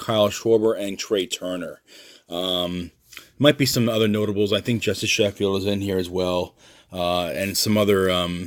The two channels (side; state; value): both; identical; correlation 1.00